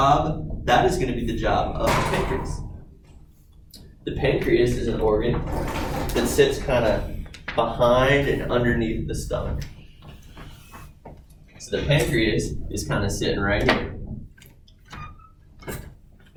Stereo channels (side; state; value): both; identical; correlation 1.00